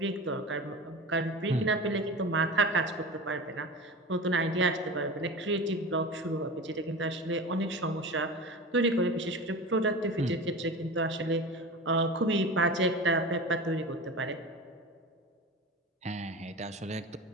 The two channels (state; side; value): normal; both; correlation 0.31